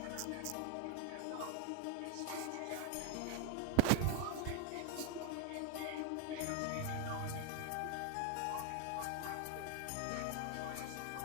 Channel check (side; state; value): both; different; correlation 0.00